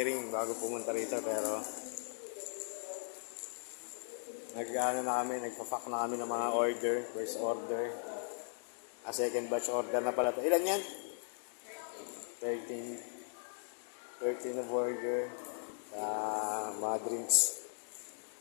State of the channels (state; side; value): silent; right; digital silence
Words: bago pumunta rito, pero nagpa-pack na kami ng mga order, first order. Second batch order na pala to. Ilan yan? 13 na burger, mga drinks,